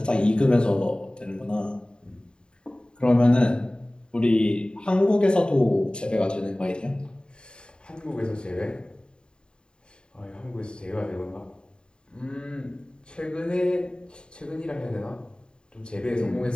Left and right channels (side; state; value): right; late; 0.050 ms